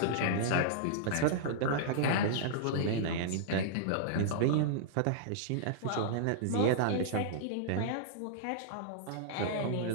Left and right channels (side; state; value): both; different; correlation -0.02